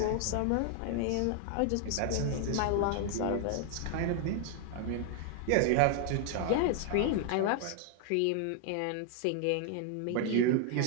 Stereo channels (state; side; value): different; both; correlation 0.00